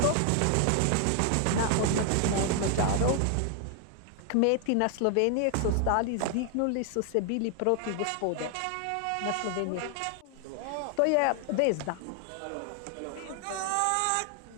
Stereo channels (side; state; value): both; different; correlation 0.00